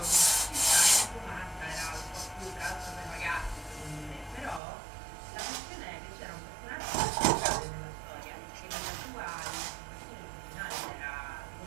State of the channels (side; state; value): left; drops out; at 4.6 s